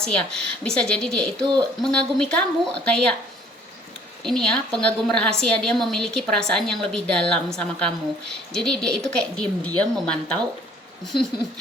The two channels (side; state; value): both; normal; correlation 0.57